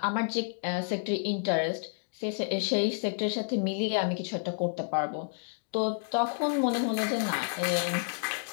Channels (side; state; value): right; silent; digital silence